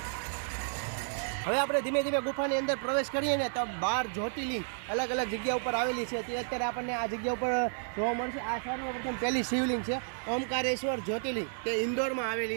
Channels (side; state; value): left; silent; digital silence